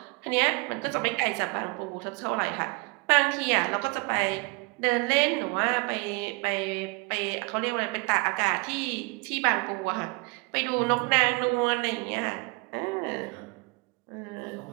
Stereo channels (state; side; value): quieter; left; 28.3 dB